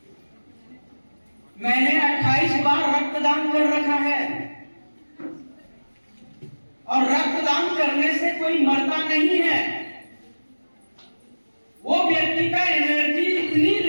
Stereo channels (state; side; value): inverted; both; correlation -1.00